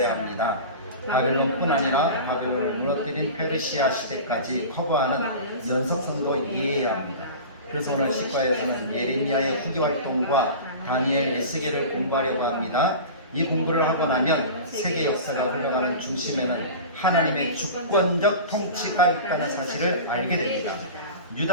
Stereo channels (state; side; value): inverted; both; correlation -0.33